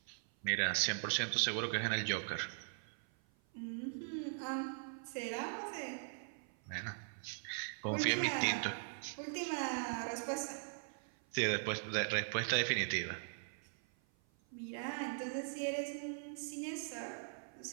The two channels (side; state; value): left; silent; 51 dB below the other